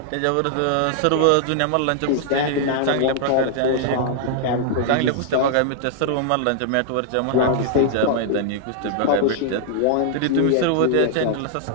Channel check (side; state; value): both; different; correlation -0.01